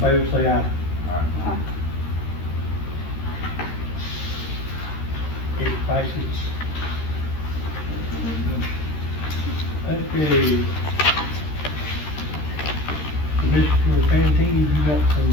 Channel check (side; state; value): right; late; 13 ms